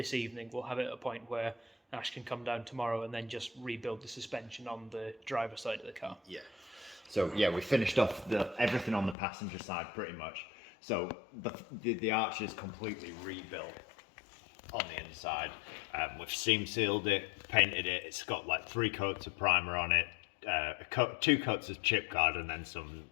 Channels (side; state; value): right; drops out; at 9.2 s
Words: evening we'll have it at a point where Ash can come down tomorrow and then just rebuild the suspension on the driver's side of the car. Yeah. So yeah, we finished off everything on the passenger side pretty much. So the arch is completely rebuilt on the inside. We've seam sealed it, painted it. It's got like 3 coats of primer on it, 2 coats of chip guard, and then some